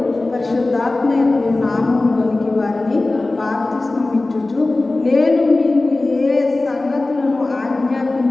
పరిశుద్ధాత్మ యొక్క నామములోనికి వారిని బాప్తిస్మమిచ్చుచు నేను మీకు ఏ సంగతులను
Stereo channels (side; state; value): right; quieter; 3.0 dB